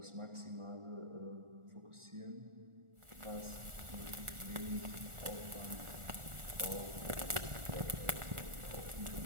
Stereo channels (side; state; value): left; late; 1.4 ms